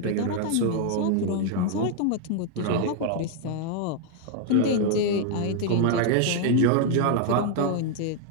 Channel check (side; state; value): both; different; correlation 0.00